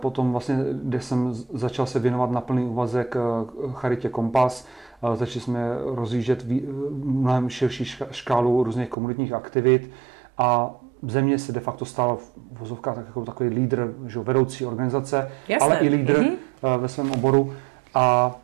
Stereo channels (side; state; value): left; drops out; at 9.0 s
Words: vlastně, kde jsem začal se věnovat na plný úvazek charitě Kompas. Začali jsme rozjíždět mnohem širší škálu různých komunitních aktivit a země se de facto stala v vozovkách jako takový lídr, že vedoucí organizace, jasné, ale i lídr ve svém oboru. A